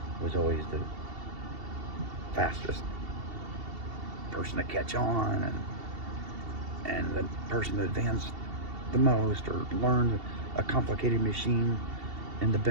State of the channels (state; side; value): late; left; 2.7 ms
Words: Was always the fastest person to catch on, and the person that advanced the most or learned a complicated machine in the